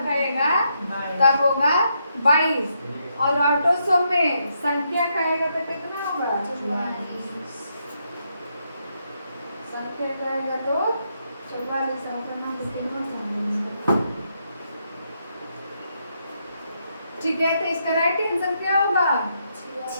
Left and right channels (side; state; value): both; inverted; correlation -0.79